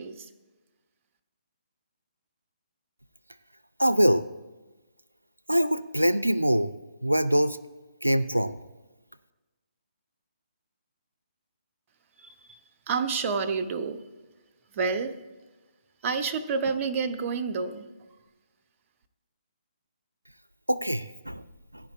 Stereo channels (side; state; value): both; inverted; correlation -0.86